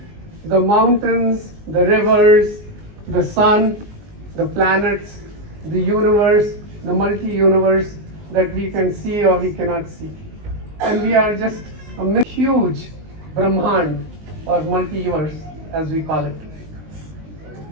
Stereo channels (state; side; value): late; left; 19 ms